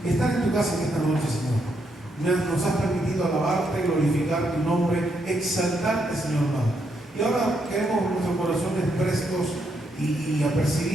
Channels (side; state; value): both; normal; correlation 0.78